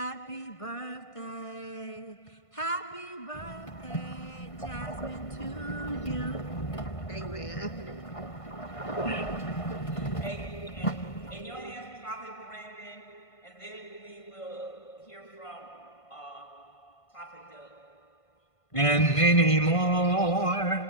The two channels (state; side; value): late; right; 1.5 ms